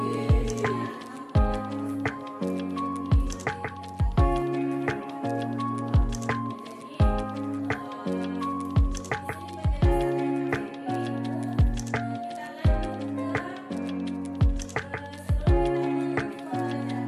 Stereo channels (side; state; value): both; identical; correlation 1.00